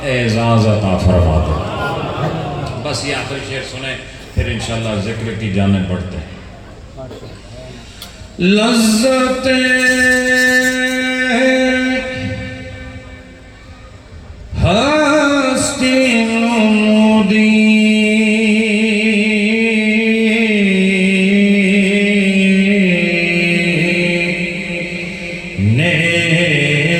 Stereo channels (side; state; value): both; identical; correlation 1.00